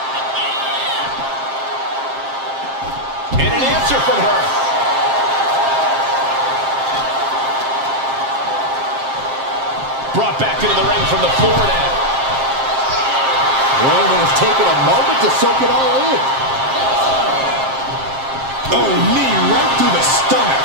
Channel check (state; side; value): late; left; 7.5 ms